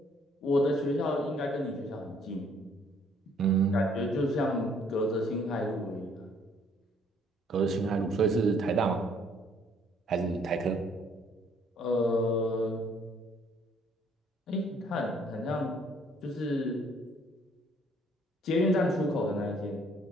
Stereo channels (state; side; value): normal; both; correlation 0.63